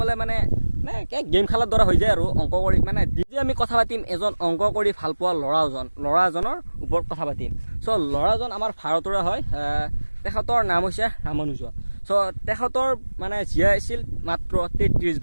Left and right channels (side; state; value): both; inverted; correlation -1.00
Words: মানে গেম খেলাৰ দৰে হৈ যায় আৰু অংক কৰি। মানে যদি আমি কথা পাতিম এজন অংক কৰি ভাল পোৱা ল'ৰা এজনৰ ওপৰত কথা পাতিম। চ' ল'ৰাজন আমাৰ ভাৰতৰে হয়, তেখেতৰ নাম হৈছে ৰামানুজন। চ' তেখেতৰ মানে জীয়াই আছিল মাত্ৰ 33